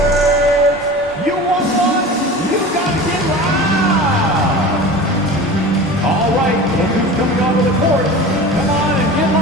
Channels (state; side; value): normal; both; correlation 0.35